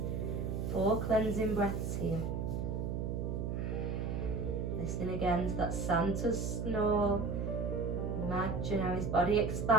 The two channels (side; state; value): right; noise; hum, 1 dB below the sound